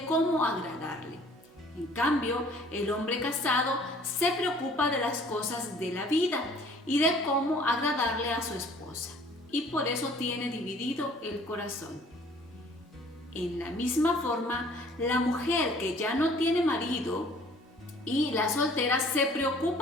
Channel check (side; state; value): both; normal; correlation 0.54